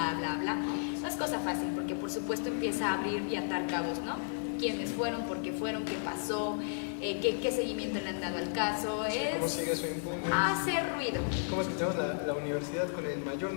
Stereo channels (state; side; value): silent; right; digital silence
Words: bla, bla, no es cosa fácil, porque por supuesto empieza a abrir y atar cabos, ¿no? ¿Quiénes fueron? ¿Por qué fueron? ¿Qué pasó? ¿Qué seguimiento le han dado al caso? Sí, ¿cómo sigue su impune? Hacer ruido. ¿Cómo es que tenemos la universidad con el mayor